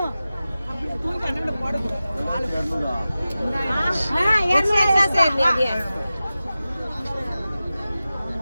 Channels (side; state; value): both; inverted; correlation -0.95